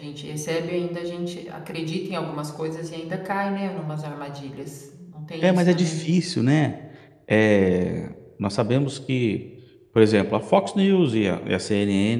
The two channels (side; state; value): both; identical; correlation 1.00